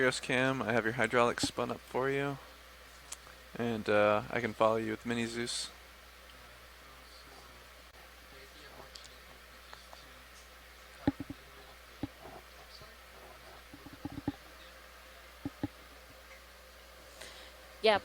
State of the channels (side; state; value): both; identical; correlation 1.00